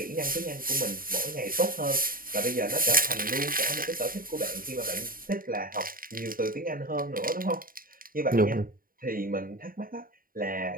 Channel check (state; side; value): late; left; 0.41 ms